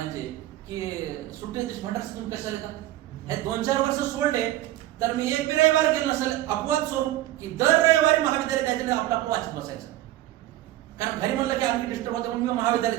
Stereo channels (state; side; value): quieter; left; 14.8 dB